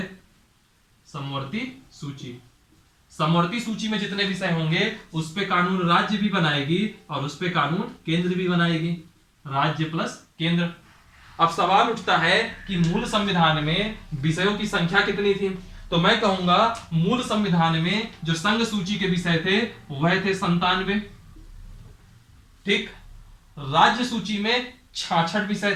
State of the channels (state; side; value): identical; both; correlation 1.00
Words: समवर्ती सूची, समवर्ती सूची में जितने विषय होंगे उस पे कानून राज्य भी बनाएगी और उस पे कानून केंद्र भी बनाएगी, राज्य प्लस केंद्र। अब सवाल उठता है कि मूल संविधान में विषयों की संख्या कितनी थी, तो मैं कहूंगा मूल संविधान में जो संघ सूची के विषय थे वह थे 97। ठीक, राज्य सूची में 66 विषय